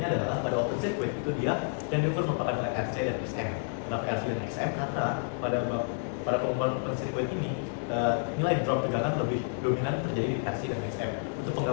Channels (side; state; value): right; silent; digital silence